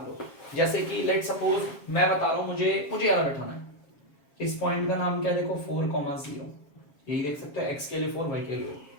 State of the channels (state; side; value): late; right; 7.3 ms